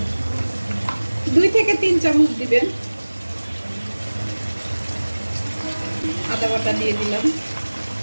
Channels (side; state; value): both; inverted; correlation -1.00